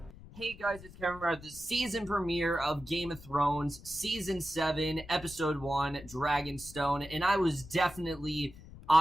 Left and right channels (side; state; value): left; noise; rumble, 18 dB below the sound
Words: Hey guys, it's Kevin. We're at the season premiere of Game of Thrones, Season 7, Episode 1, Dragonstone, and I was definitely,